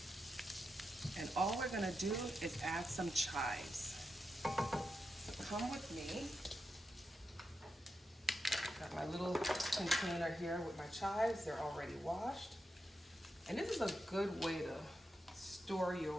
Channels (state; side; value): normal; both; correlation 0.87